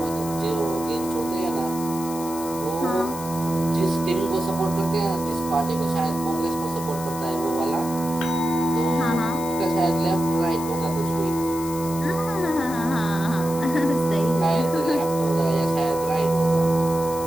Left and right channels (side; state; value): left; noise; hiss, 12 dB below the sound